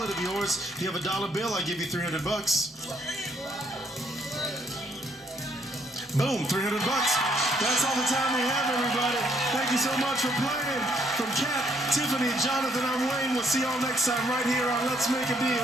of yours, you have a dollar bill. I give you 300 bucks. Boom, 300 bucks. That's all the time we have, everybody. Thank you so much for playing. From Kat, Tiffany, Jonathan, I'm Wayne. We'll see y'all next time right here on Let's Make a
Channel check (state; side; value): normal; both; correlation 0.69